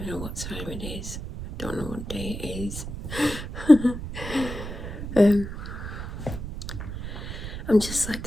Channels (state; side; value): noise; right; rumble, 7 dB below the sound